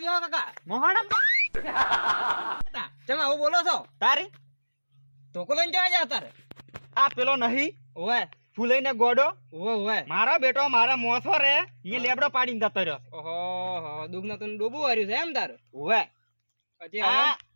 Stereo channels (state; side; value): inverted; both; correlation -1.00